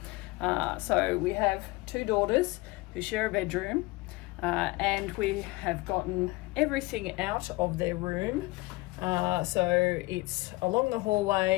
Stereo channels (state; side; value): quieter; right; 22.4 dB